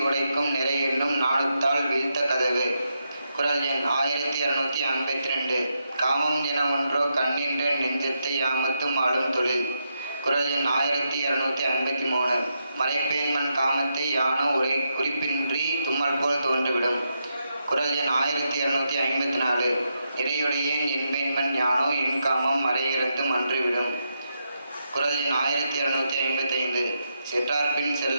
உடைக்கும் நிறை என்னும் நாணுத்தால் வீழ்த்த கதவு. குறள் எண் 1252. காமம் என ஒன்றோ கண்ணின்ற நெஞ்சத்தை யாமத்தும் ஆளும் தொழில். குறள் எண் 1253. மறைப்பேன்மன் காமத்தை யானோ குறிப்பின்றி தும்மல் போல் தோன்றிவிடும். குறள் எண் 1254. நிறையுடையேன் என்பேன்மன் யானோ என் காமம் மறையிறந்தும் அன்றுவிடும். குறள் எண் 1255. செற்றார்பின்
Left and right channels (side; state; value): both; inverted; correlation -0.83